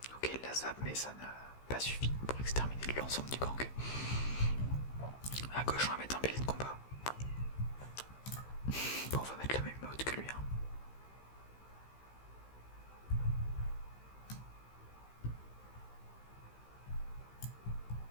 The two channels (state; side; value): late; right; 15 ms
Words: Ok, il la zappe mais ça n'a pas suffi pour exterminer l'ensemble du gang. À gauche on va mettre un bélier de combat. Bon, on va mettre la même mode que lui. Hein.